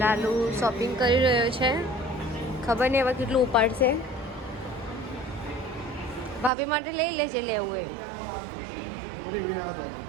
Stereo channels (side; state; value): left; drops out; at 6.5 s